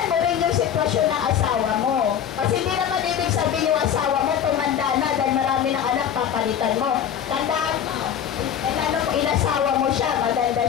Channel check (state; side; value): quieter; right; 9.1 dB